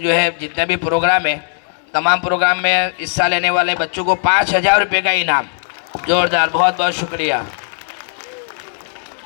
है जितने भी प्रोग्राम है, तमाम प्रोग्राम में हिस्सा लेने वाले बच्चों को 5000 रुपये का इनाम, जोरदार, बहुत बहुत शुक्रिया।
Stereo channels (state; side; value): silent; right; digital silence